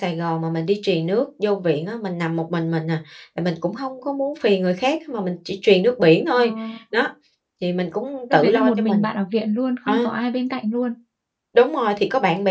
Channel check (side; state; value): both; identical; correlation 1.00